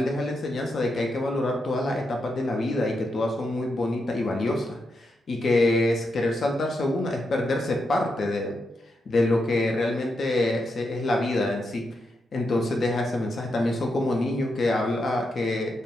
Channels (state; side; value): normal; both; correlation 0.84